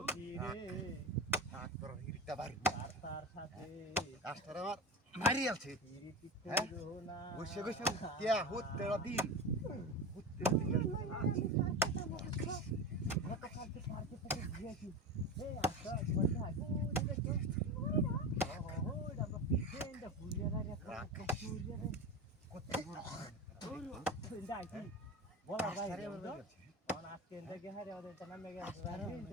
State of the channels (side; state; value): both; normal; correlation 0.25